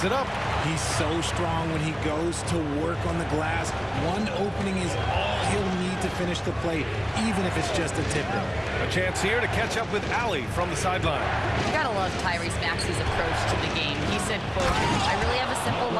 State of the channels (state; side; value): identical; both; correlation 1.00